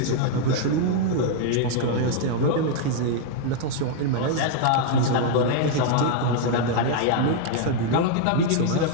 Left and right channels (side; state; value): both; different; correlation 0.00